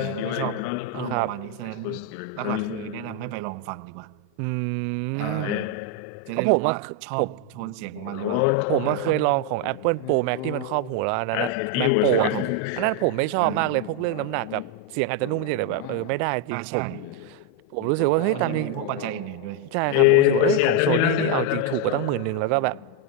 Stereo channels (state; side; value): different; both; correlation 0.02